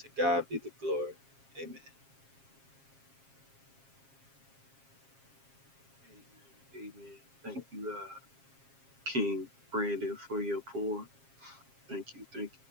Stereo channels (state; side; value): late; left; 7.4 ms